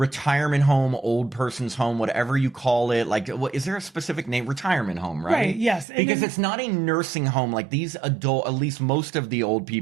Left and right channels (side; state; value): left; drops out; at 5.9 s